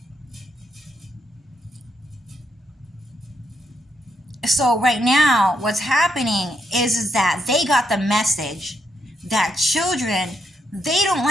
so right now what's happening is that they got the message that children, they don't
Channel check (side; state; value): both; normal; correlation 0.78